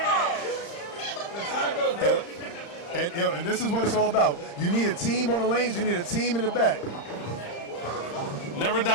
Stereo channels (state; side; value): late; right; 35 ms